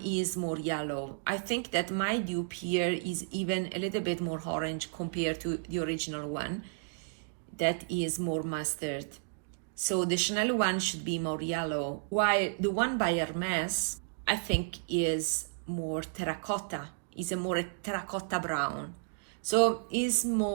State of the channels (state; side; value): silent; left; digital silence